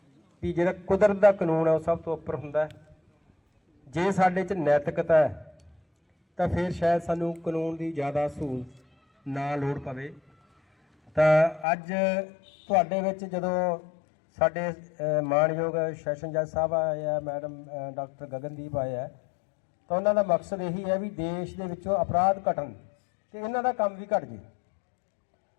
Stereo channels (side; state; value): right; drops out; at 11.7 s